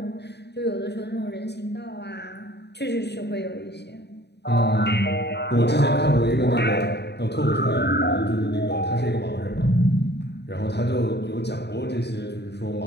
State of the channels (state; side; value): late; right; 0.49 ms